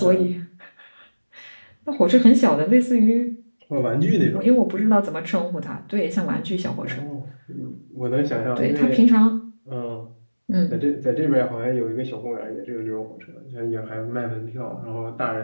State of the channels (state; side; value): inverted; both; correlation -1.00